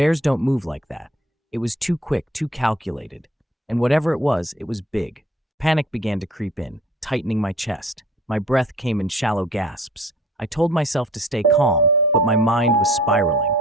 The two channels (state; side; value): normal; both; correlation 0.52